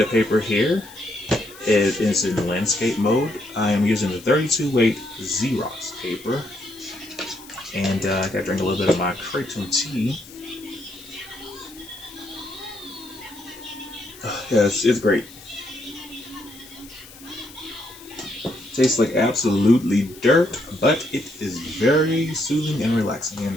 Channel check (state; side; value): noise; left; hiss, 20 dB below the sound